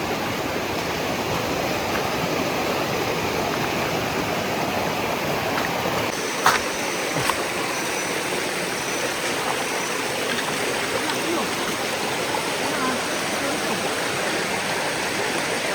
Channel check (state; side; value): identical; both; correlation 1.00